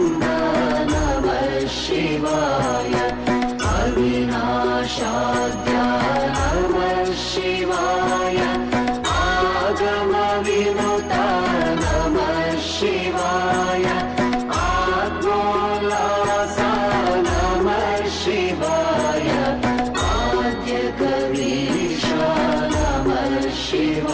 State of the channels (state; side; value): identical; both; correlation 1.00